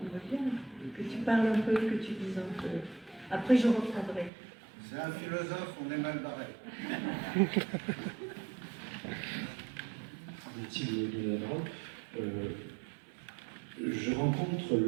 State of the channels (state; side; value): drops out; left; at 4.3 s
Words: bien que tu parles un peu, que tu dises un peu. Après, je reprendrai. C'est un philosophe, on est mal barré. Merci de la parole. Je rencontre